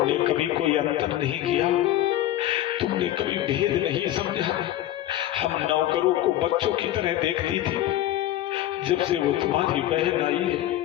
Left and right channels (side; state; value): right; quieter; 13.5 dB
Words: कभी कोई अंतर नहीं किया, तुमने कभी भेद नहीं समझा। हम नौकरों को बच्चों की तरह देखती थी। जब से वो तुम्हारी बहन आई है